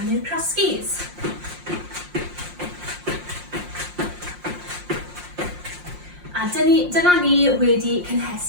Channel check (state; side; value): late; left; 5.6 ms